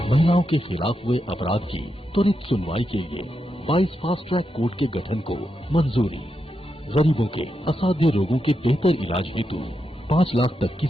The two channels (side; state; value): both; normal; correlation 0.85